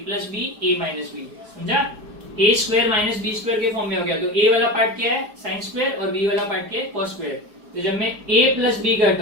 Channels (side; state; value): left; late; 4.8 ms